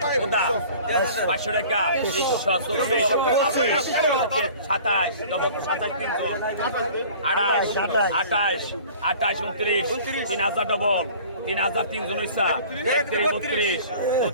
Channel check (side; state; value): both; inverted; correlation -0.46